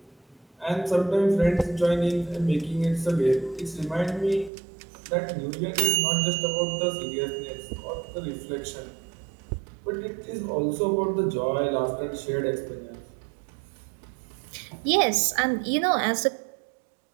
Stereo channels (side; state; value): left; drops out; at 4.5 s